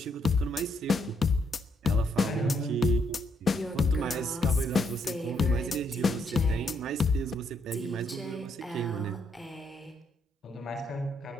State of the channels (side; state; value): both; normal; correlation 0.74